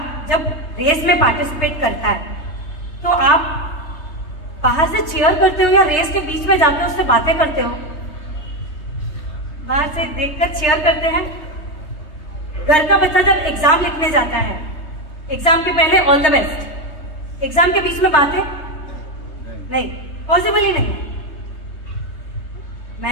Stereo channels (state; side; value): late; right; 3.3 ms